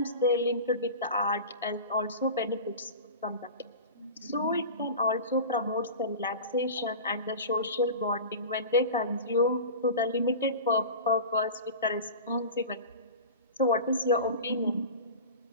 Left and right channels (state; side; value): inverted; both; correlation -0.32